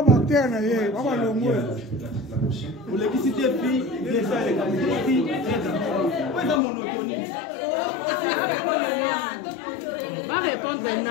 bactère na ye baba longo pour l'électricité puis déjà les capacités ouais dans monotonie va répondre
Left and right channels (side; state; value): right; drops out; at 6.6 s